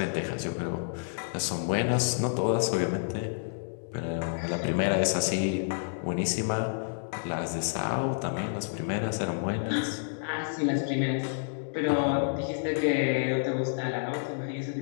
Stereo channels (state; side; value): silent; right; digital silence